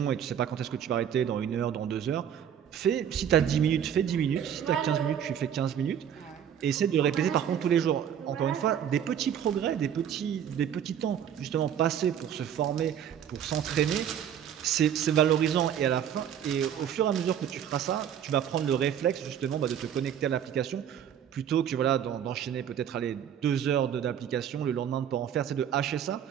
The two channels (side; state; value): left; quieter; 9.2 dB